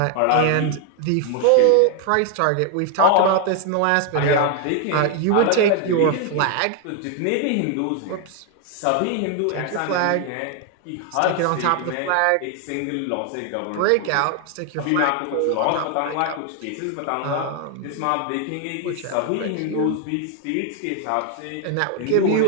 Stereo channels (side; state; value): both; different; correlation 0.00